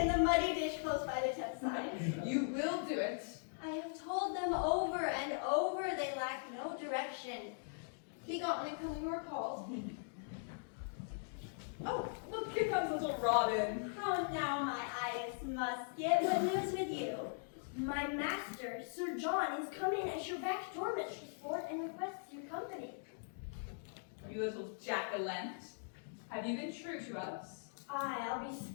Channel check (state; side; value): silent; right; digital silence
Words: in the muddy dish close by the tent side. You will do it. I have told them over and over they lack no direction. Be gone and come when you are called. Oh, look, here comes little Robin. How now, my Idas Musket, what news with you? My master, Sir John, is come in at your back door, Mistress Ford, and requests your company. You little jack-o'-lantern. Have you been true to us? Aye, I'll be